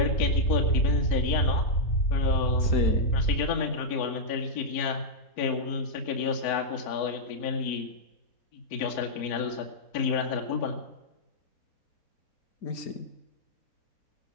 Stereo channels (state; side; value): late; right; 4.5 ms